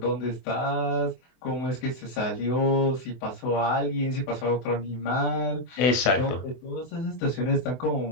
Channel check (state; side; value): late; right; 24 ms